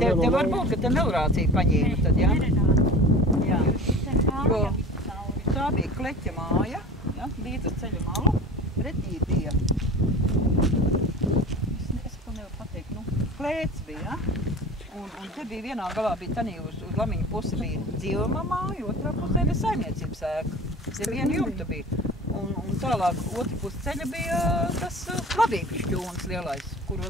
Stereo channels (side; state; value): both; normal; correlation 0.37